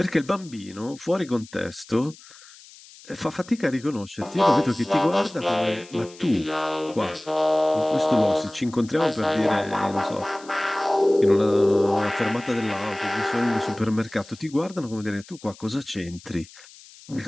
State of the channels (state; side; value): noise; left; hiss, 21 dB below the sound